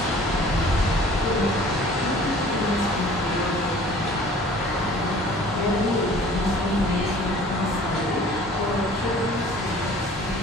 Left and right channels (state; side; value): normal; both; correlation 0.49